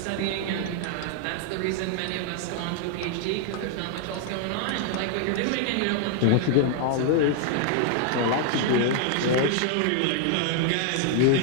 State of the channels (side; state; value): both; different; correlation 0.00